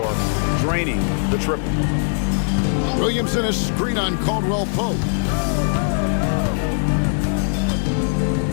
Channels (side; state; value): right; silent; 63 dB below the other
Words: draining the triple. Williamson is screen on Caldwell Pope.